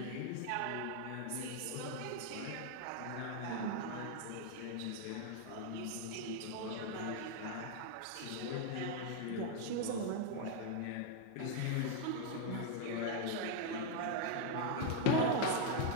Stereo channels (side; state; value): both; different; correlation 0.00